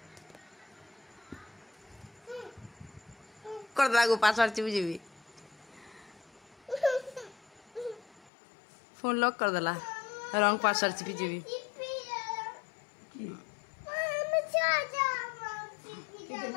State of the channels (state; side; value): drops out; right; at 8.3 s